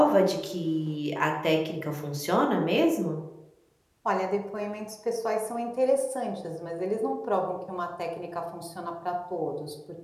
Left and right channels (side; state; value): both; identical; correlation 1.00